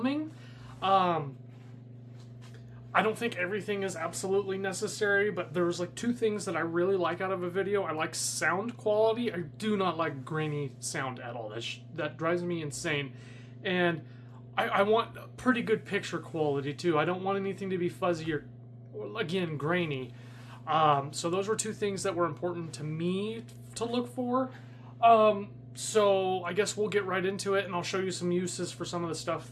I don't think everything is absolutely necessary, but there's like two things that I really like out of a video. I like sound quality. I do not like grainy sound at all. That drives me insane. And I want pretty good picture quality too. I don't want anything to be fuzzy or again, grainy. So those were two things that were important to me to look for. So I guess we'll get right into it, and I'll show you some uses for some of the stuff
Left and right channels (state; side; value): identical; both; correlation 1.00